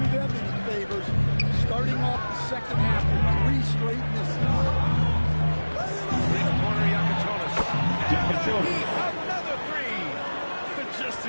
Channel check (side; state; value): both; inverted; correlation -1.00